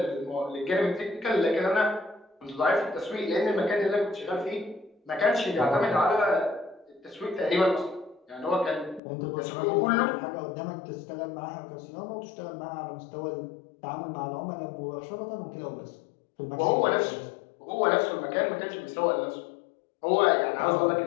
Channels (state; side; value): drops out; right; at 9.0 s